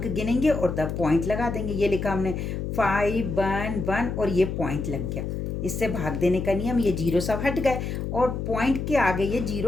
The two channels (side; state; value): left; noise; hum, 4 dB below the sound